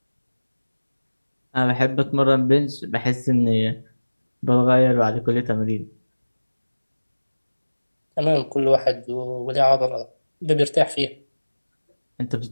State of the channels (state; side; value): inverted; both; correlation -1.00